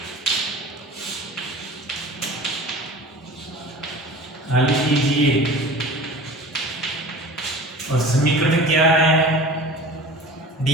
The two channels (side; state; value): both; normal; correlation 0.39